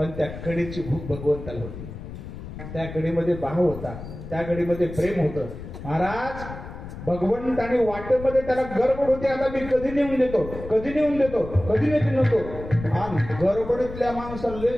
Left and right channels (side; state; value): left; noise; rumble, 11 dB below the sound